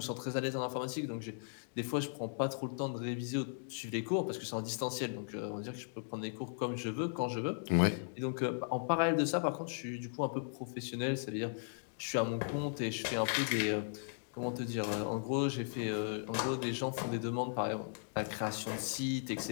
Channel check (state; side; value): silent; right; digital silence